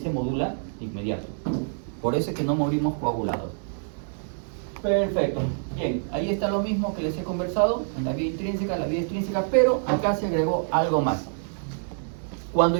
se modula de inmediato. Por eso es que no morimos coagulados. Perfecto. Bien, ahí está lo mismo que les he conversado, en la vía intrínseca, la vía extrínseca, pero acá se agregó algo más. Cuando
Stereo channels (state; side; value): silent; left; 61 dB below the other